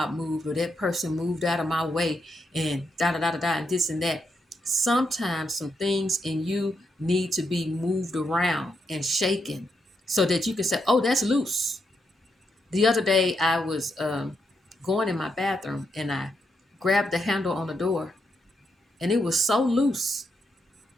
moved or that person moved out of my way and da da da da da and this and that. Sometimes some things in you need to be moved around and shaken so that you can say, oh, that's loose. The other day I was going in my bathroom and I grabbed the handle on the door and it was so loose,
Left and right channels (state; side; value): normal; both; correlation 0.81